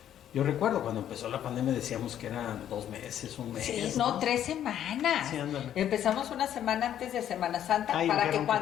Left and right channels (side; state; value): right; quieter; 10.6 dB